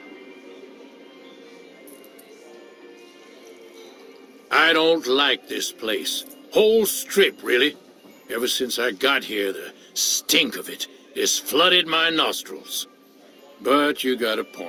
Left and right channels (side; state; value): both; identical; correlation 1.00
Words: I don't like this place. Whole strip, really. Ever since I got here, the stink of it has flooded my nostrils. But you got a